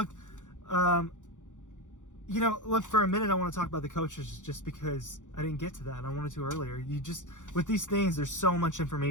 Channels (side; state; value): right; late; 0.86 ms